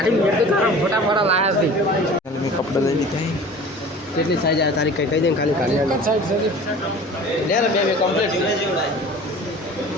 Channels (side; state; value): both; normal; correlation 0.42